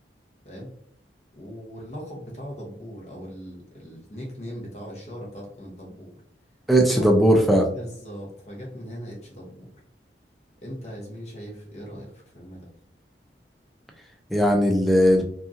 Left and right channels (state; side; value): normal; both; correlation 0.79